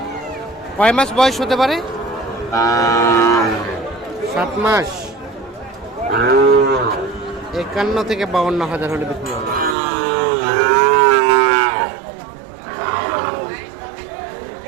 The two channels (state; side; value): drops out; left; at 9.8 s